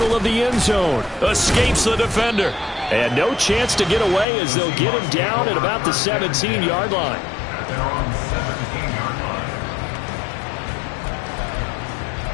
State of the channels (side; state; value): right; drops out; at 4.2 s